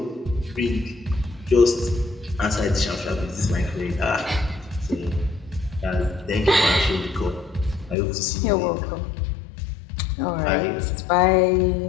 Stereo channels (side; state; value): right; drops out; at 8.0 s